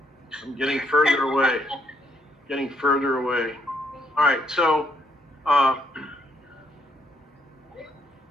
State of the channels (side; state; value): both; normal; correlation 0.71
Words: I'm getting further away. Getting further away. All right, so